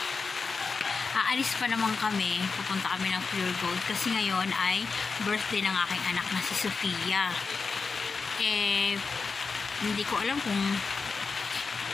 Aalis pa naman kami. Pupunta kami ng Pure Gold kasi ngayon ay birthday ng aking anak na si Sofia. Hindi ko alam kung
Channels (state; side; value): quieter; right; 4.7 dB